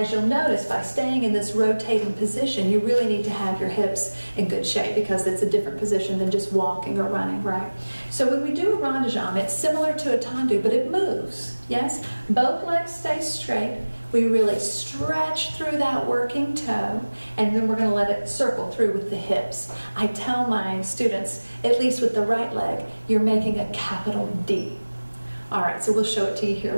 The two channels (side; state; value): both; inverted; correlation -1.00